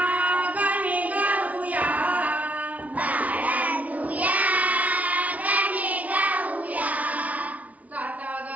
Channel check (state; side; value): late; left; 0.070 ms